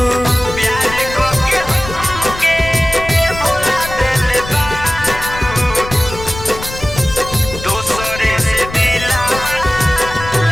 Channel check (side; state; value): left; noise; rumble, 11 dB below the sound